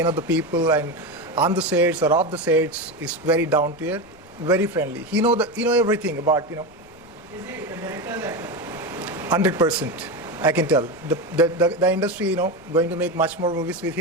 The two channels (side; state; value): left; noise; rumble, 26 dB below the sound